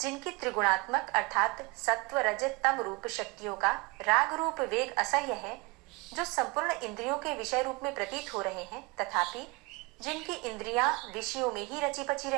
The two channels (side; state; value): left; quieter; 25.8 dB